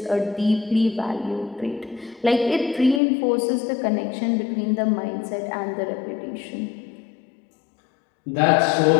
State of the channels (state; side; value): drops out; right; at 3.0 s